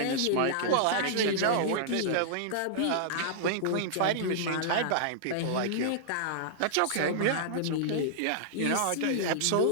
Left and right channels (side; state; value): both; different; correlation -0.02